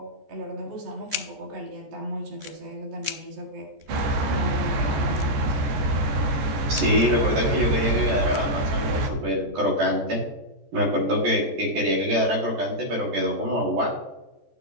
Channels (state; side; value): late; left; 14 ms